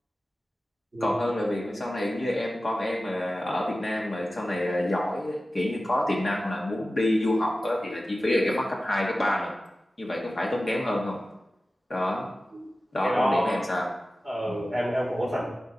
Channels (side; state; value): both; normal; correlation 0.95